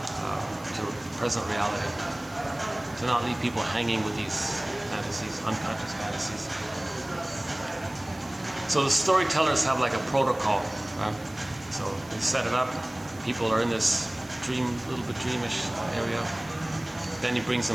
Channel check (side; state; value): right; noise; hiss, 23 dB below the sound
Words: present reality. To not leave people hanging with these fantasies, unconscious fantasies. So the storytellers have like a protocol. So they set it up. People are in this little bit dreamish area. Then he brings